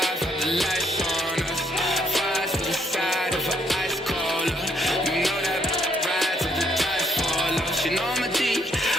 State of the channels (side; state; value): both; normal; correlation 0.71